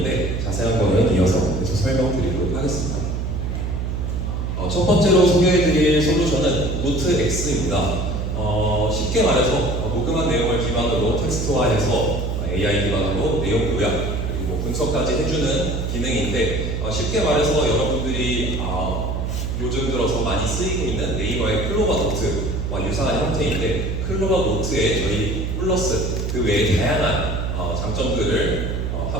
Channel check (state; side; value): noise; right; hum, 2 dB below the sound